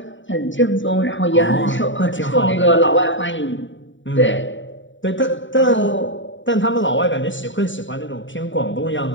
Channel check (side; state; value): right; late; 0.55 ms